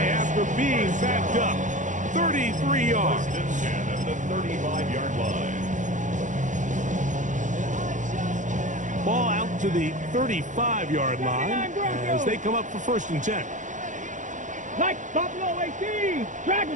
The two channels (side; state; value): left; late; 0.36 ms